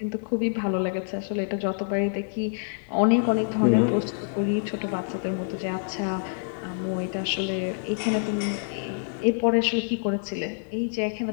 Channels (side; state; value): right; silent; 61 dB below the other